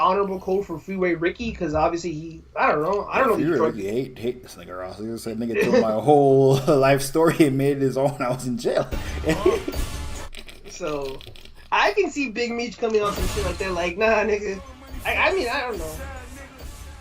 code for Freeway Ricky? Because obviously I don't know. Freeway Ricky hate this nigga Ross. He said nigga told my whole life story and made it his own. I was in jail. So I can see Big Meech coming on some shit like that. Like, nah, nigga. I mean, I don't know.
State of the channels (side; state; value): both; identical; correlation 1.00